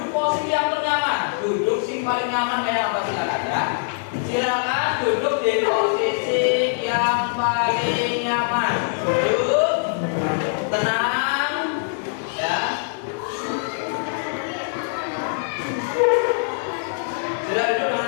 posisi yang ternyaman. Duduk sing paling nyaman kayak apa silakan ya. Silakan duduk di posisi yang paling nyaman. Duduk tenang ya. Sudah duduk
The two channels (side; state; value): right; silent; digital silence